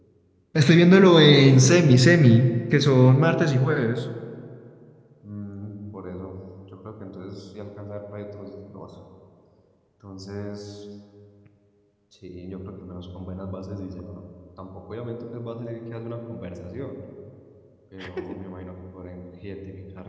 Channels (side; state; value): both; identical; correlation 1.00